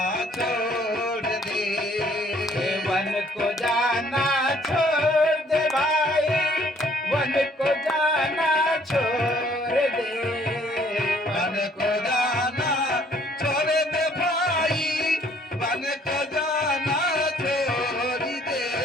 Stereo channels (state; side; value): normal; both; correlation 0.61